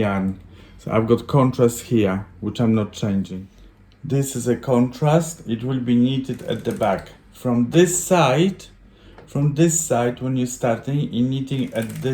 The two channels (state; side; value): identical; both; correlation 1.00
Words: So I've got contrast here, which I'm not changing. This is a contrast. It will be knitted at the back. From this side, when you're starting, you're knitting at